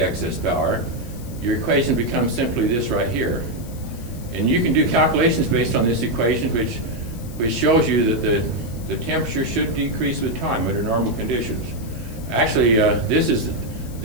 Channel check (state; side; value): noise; left; hiss, 20 dB below the sound